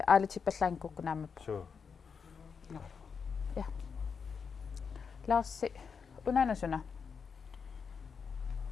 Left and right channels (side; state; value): right; quieter; 6.0 dB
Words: aalitippallaankukkinaamappa så ja Larsi unanasuna